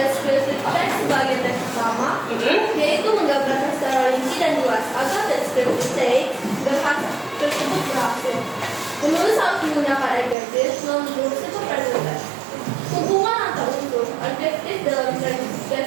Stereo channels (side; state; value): left; drops out; at 10.4 s